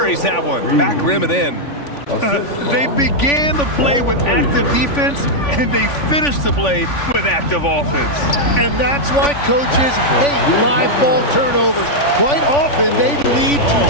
that one. Back rim and in. They began the play with active defense, and they finished the play with active offense. And that's why coaches hate live ball turnovers. Quite often, they lead to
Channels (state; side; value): late; right; 3.5 ms